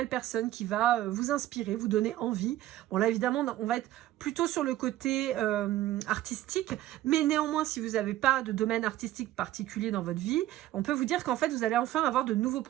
personne qui va vous inspirer, vous donner envie. Bon là évidemment on va être plutôt sur le côté artistique, mais néanmoins si vous n'avez pas de domaine artistique particulier dans votre vie, on peut vous dire qu'en fait vous allez enfin avoir de nouveaux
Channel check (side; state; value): left; quieter; 14.5 dB